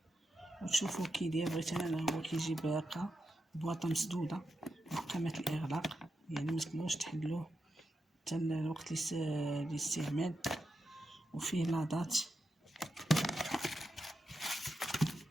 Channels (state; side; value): normal; both; correlation 0.87